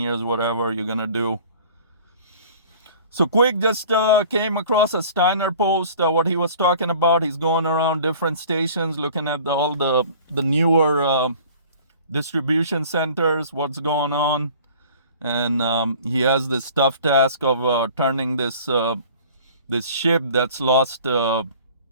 whatever you're gonna do. So quick, just came across a Steiner post, what he was talking about. He's going around different stations looking at all the newer distribution centers, what's going on. And he has this tough task of turning this ship that's lost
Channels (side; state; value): both; inverted; correlation -0.47